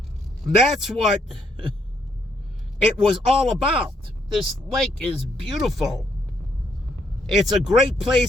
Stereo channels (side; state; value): both; normal; correlation 0.73